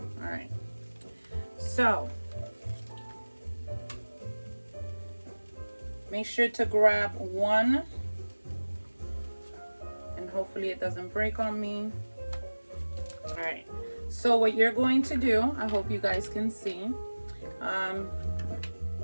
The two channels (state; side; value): inverted; both; correlation -1.00